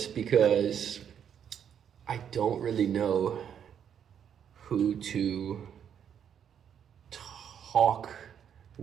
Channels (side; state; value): left; quieter; 8.6 dB